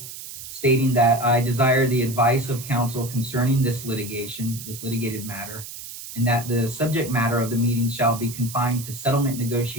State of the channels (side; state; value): right; noise; hiss, 12 dB below the sound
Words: stating that I desire the advice of council concerning this litigation, this litigated matter, and that the subject matter of the meeting shall be confined to settlement